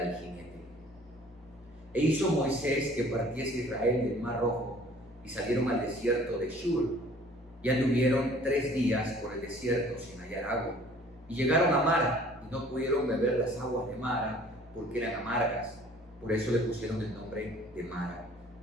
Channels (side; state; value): both; normal; correlation 0.53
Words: jinete. E hizo Moisés que partiese Israel del mar Rojo, y salieron al desierto de Shur, y anduvieron 3 días por el desierto sin hallar agua, y llegaron a Mara, y no pudieron beber las aguas de Mara, porque eran amargas. Por eso le pusieron el nombre de Mara.